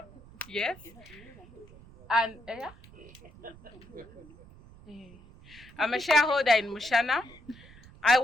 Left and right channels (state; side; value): noise; right; rumble, 21 dB below the sound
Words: Yes. And I'm a shareholder in Mushana. I